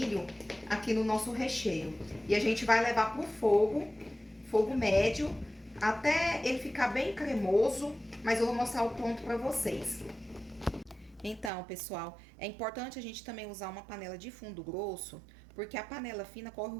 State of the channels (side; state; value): left; drops out; at 11.5 s